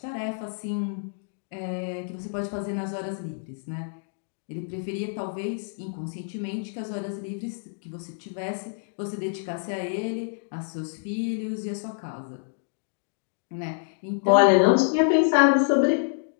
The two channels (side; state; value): right; silent; digital silence